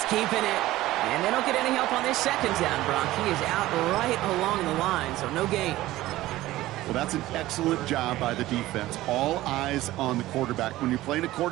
keeping it. And they don't get any help on this second down, Brock. He is out right along the line, so no gain. Well, that's an excellent job by the defense. All eyes on the quarterback. When you're playing a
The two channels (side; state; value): left; quieter; 16.3 dB